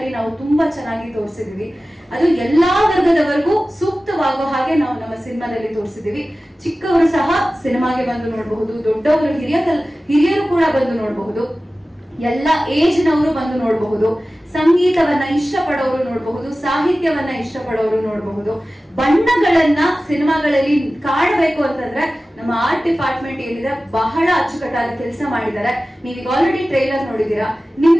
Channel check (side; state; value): both; normal; correlation 0.96